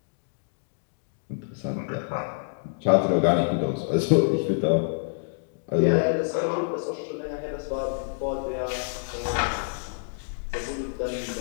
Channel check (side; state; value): right; silent; digital silence